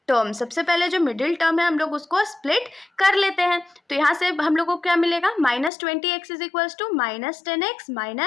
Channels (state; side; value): drops out; right; at 5.7 s